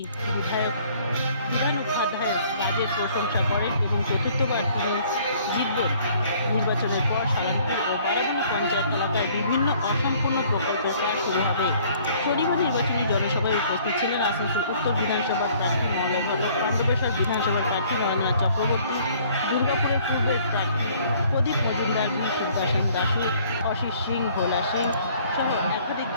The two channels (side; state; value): both; inverted; correlation -0.58